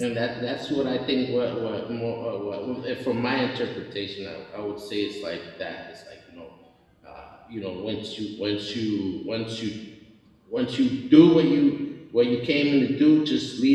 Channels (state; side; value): identical; both; correlation 1.00